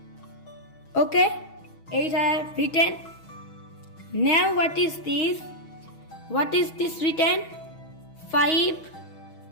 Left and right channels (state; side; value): late; right; 6.3 ms